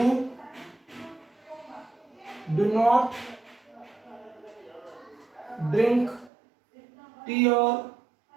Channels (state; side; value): drops out; left; at 6.3 s